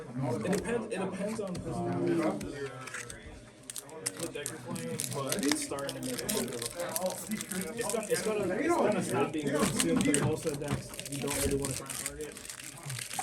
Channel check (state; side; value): identical; both; correlation 1.00